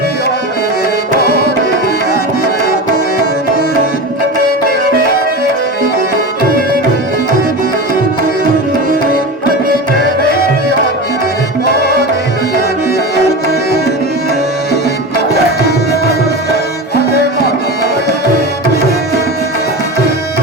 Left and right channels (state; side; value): normal; both; correlation 0.26